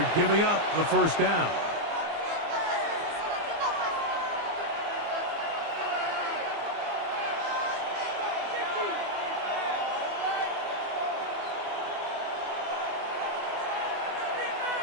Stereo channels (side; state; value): left; late; 24 ms